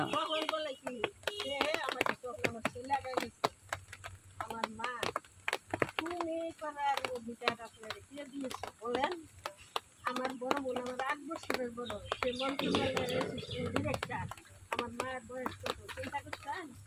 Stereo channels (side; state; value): both; identical; correlation 1.00